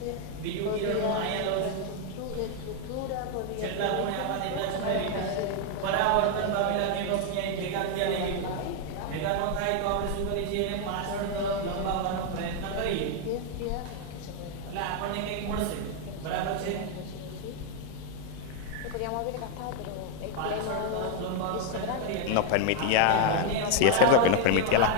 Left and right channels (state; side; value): different; both; correlation 0.00